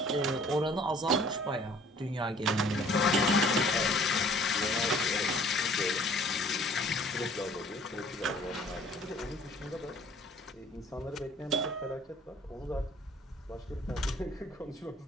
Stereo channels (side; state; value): both; normal; correlation 0.54